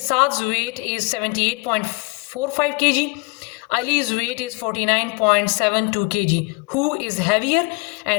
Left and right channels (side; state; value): right; quieter; 28.9 dB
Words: wait is 78.45 kg, Ali's weight is 49.72 kg. Who is heavier